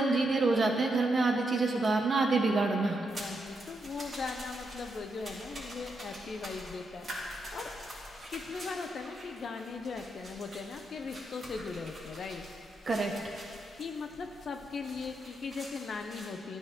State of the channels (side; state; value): both; normal; correlation 0.81